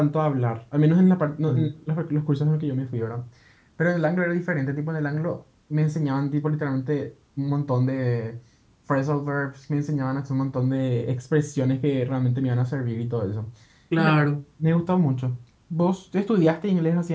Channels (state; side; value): identical; both; correlation 1.00